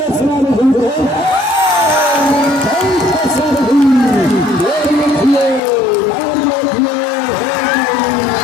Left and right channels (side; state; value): right; drops out; at 5.6 s